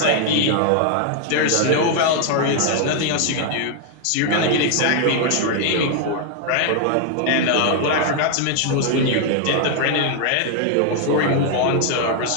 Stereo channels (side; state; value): both; different; correlation 0.00